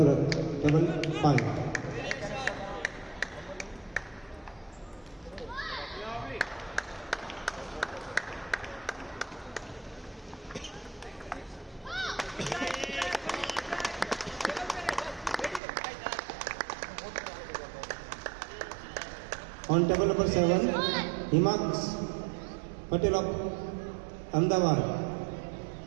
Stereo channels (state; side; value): drops out; left; at 15.6 s